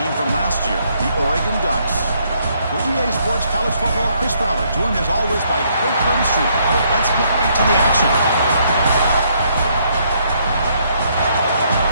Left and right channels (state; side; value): inverted; both; correlation -0.70